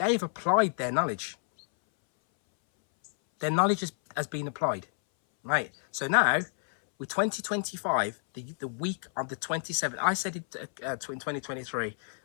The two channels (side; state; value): right; silent; 58 dB below the other